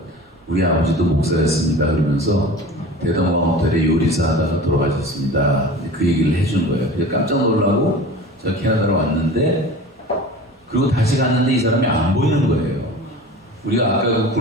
우리 아버지도 목사였습니다. 그러면서 대동강 호텔에 요리사 하다가 돌아가셨습니다. 그 얘기를 해준 거예요. 그래서 깜짝 놀라고 제가 캐나다로 왔는데 그리고 다시 갔는데 이 사람이 안 보이는 거예요. 우리가 아까 그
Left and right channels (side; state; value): both; normal; correlation 0.38